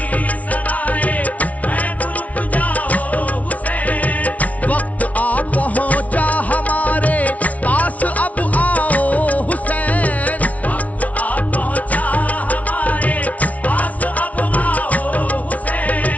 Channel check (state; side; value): late; right; 0.069 ms